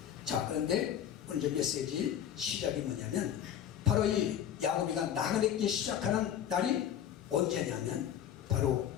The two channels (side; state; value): right; quieter; 9.9 dB